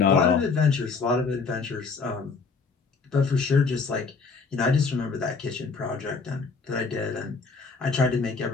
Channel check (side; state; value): right; quieter; 4.6 dB